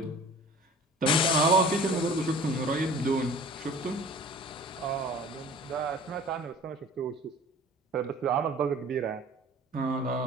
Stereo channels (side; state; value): both; normal; correlation 0.45